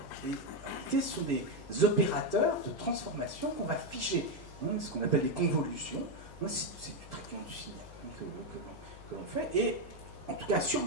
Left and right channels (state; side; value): noise; left; hum, 17 dB below the sound